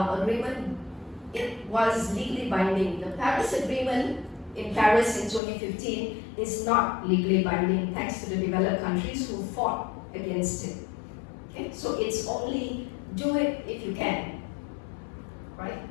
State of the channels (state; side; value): drops out; right; at 5.4 s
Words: It was legally binding. The Paris Agreement in Paris in 2015 is not legally binding thanks to the developed countries who fought against it. Okay? So it's only do it if you can, right?